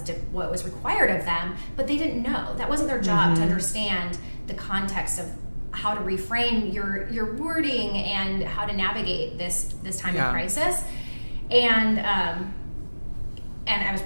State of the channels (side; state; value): both; inverted; correlation -1.00